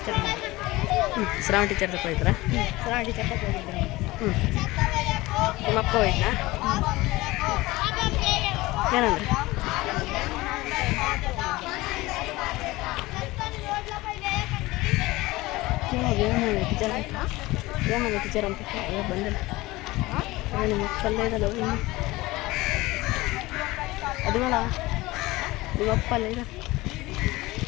ಶ್ರಾವಣ ಟೀಚರ್ ತಕ್ಕ ಹೋಯ್ತಾರ ಶ್ರಾವಣ ಟೀಚರ್ ತಕ್ಕ ಹೋಗಿದ್ರು ನಿಮ್ಮಪ್ಪ ಹೋಯ್ತಾ ಏನಂದ್ರೆ ಏಮಂದ ಟೀಚರ್ ಅಂತ ಬಂದಿಲ್ಲ ನಿಮ್ಮ ಮಕ್ಕಳಲ್ಲೇ ಇದಲ್ಲ ಅದು ಬೇಡ ನಿಮ್ಮಪ್ಪ ಅಲ್ಲೇ ಇದೆ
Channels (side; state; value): right; quieter; 19.9 dB